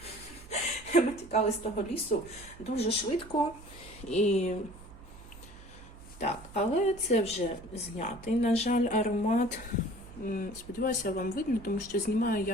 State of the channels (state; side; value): noise; right; hum, 19 dB below the sound